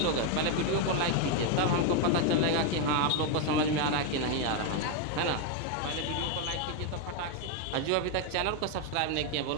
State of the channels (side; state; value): both; different; correlation 0.01